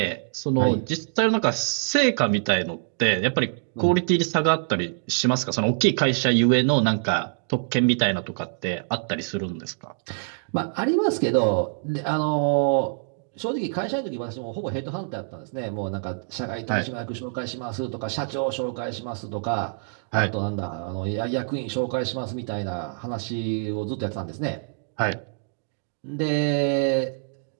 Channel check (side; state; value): left; silent; digital silence